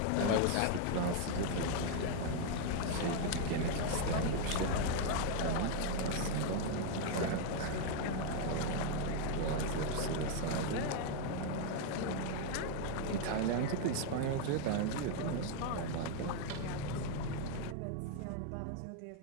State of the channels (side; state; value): both; different; correlation 0.00